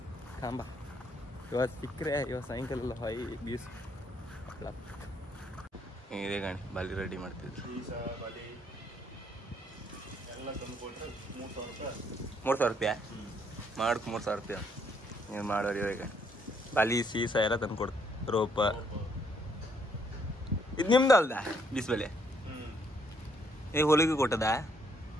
ಕಾಂಬ. ಇವತ್ತು ಸಿಕ್ಕರೆ ಇವತ್ತು ಸಾಯಂಕಾಲ ಎಲ್ಲ ಹೊಯ್ ಬೀಸ್ ಇದೆ ಗಾಣಿ ಬಾಲಿ ರೆಡಿ ಮಾಡ್ತಿದ್ರು. 3,000 ರೂಪಾಯಿ ಮಾಡಕ್ಕೆ 3,000 ರೂಪಾಯಿ ನೀವು ಮಾಡೋರು. ಇವಾಗ ಬಾಲಿ ಸೀಸ ಎಲ್ಲ ತಂದು ಕೊಡ್ತು. ರೋಪ ಇದು ನಿಮ್ದು ಅಲ್ದ ಬೀಸ್ಬಲೆ ಈಗ ಹೊಲಿಗೆ ಕೊಟ್ಟದ.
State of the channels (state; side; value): normal; both; correlation 0.70